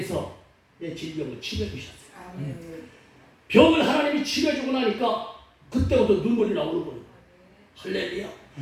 내 질병을 치료해주셨어요. 아멘. 병을 하나님이 치료해주고 나니까 그때부터 눈물이 나오는 거예요. 할렐루야.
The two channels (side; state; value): both; identical; correlation 1.00